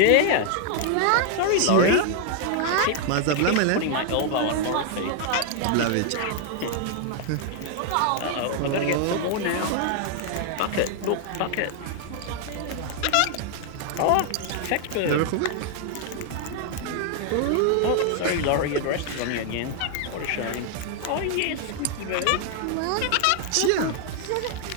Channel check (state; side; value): different; both; correlation 0.00